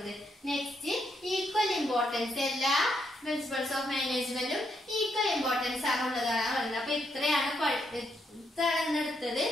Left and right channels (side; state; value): both; normal; correlation 0.78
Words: Next, equal importance. എല്ലാ പ്രിൻസിപ്പൾസ് ഓഫ് മാനേജ്മെന്റും ഈക്വൽ ഇമ്പോർട്ടൻസ് ആണ് ഉള്ളതാണ് പറയുന്നത്. അപ്പൊ ഇത്രയാണ് എടുത്തത്.